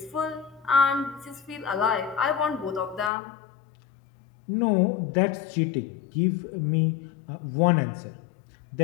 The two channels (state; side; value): drops out; right; at 3.1 s